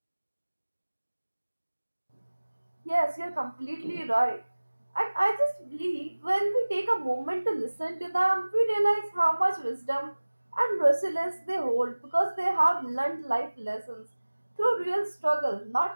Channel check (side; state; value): both; inverted; correlation -1.00